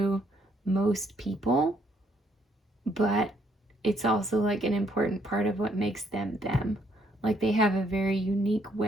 most people, but it's also like an important part of what makes them them. Like, they have a very unique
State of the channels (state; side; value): normal; both; correlation 0.70